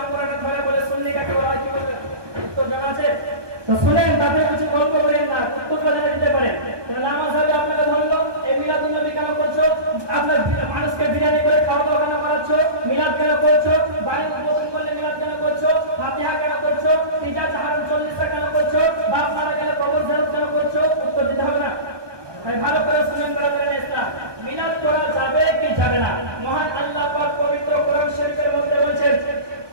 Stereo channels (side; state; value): left; late; 1.2 ms